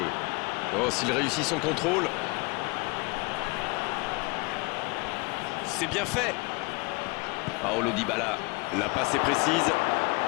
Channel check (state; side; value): quieter; right; 27.5 dB